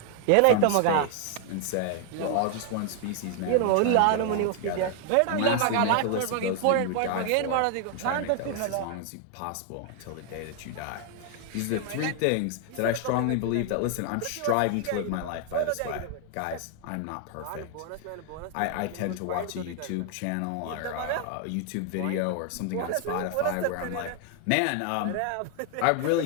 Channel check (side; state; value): both; different; correlation 0.00